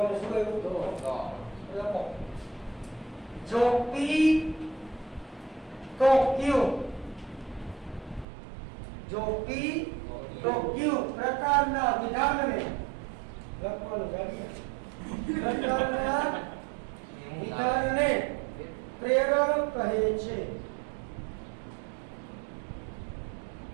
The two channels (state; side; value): drops out; left; at 8.2 s